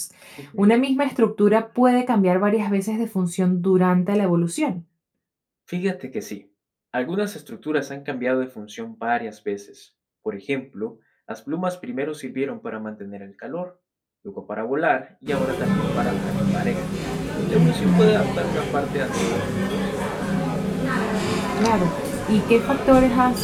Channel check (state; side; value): identical; both; correlation 1.00